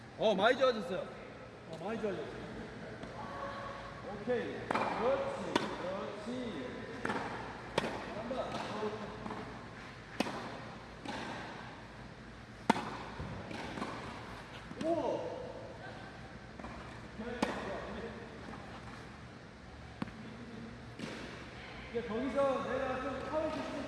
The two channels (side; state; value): both; identical; correlation 1.00